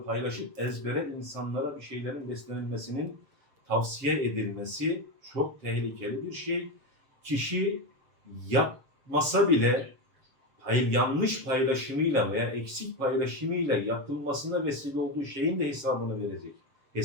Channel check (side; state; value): left; late; 7.2 ms